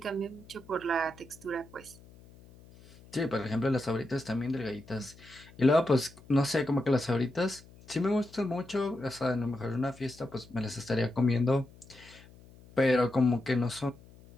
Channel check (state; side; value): noise; left; hum, 23 dB below the sound